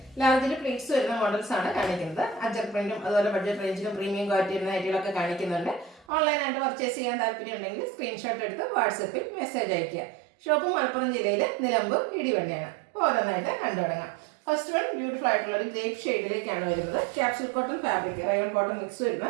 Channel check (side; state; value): left; drops out; at 6.1 s